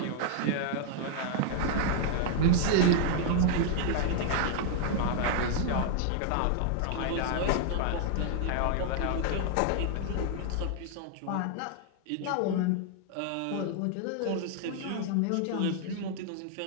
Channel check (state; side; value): different; both; correlation 0.00